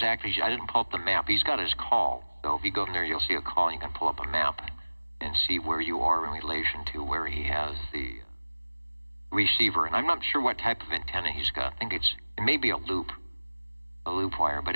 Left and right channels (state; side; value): inverted; both; correlation -1.00